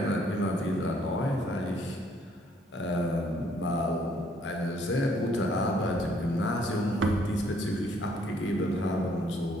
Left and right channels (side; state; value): both; normal; correlation 0.66